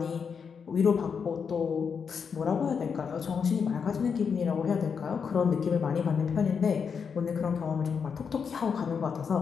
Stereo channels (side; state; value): right; quieter; 6.3 dB